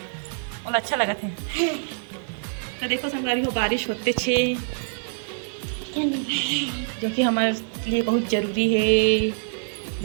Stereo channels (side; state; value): left; silent; 62 dB below the other